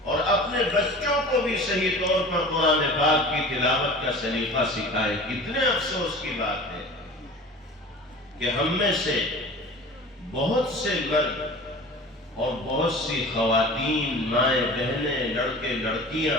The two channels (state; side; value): normal; both; correlation 0.39